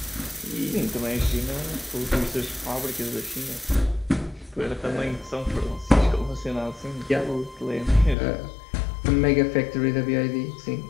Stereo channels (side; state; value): right; drops out; at 8.2 s